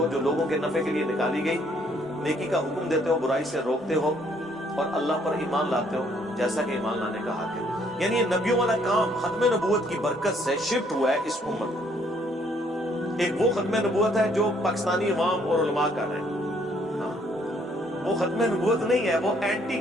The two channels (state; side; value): normal; both; correlation 0.66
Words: جو لوگوں کے نفع کے لیے نکالی گئی، نیکی کا حکم دیتے ہو، برائی سے روکتے ہو، اور اللہ پر ایمان لاتے ہو جیسا کہ ایمان لانے کا حق ہے۔ یعنی یہ نبیوں والا کام ختم نبوت کی برکت سے شفٹ ہوا ہے اس امت میں۔ ایک وہ ختم نبوت ہے جو پاکستانی عوام اور علماء کر رہے ہیں، وہ ختم نبوت نہیں ہے، وہ اینٹی